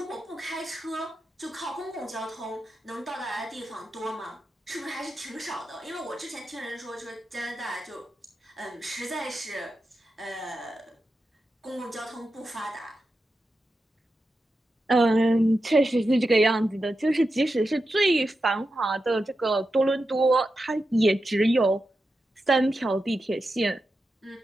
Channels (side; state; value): both; normal; correlation 0.89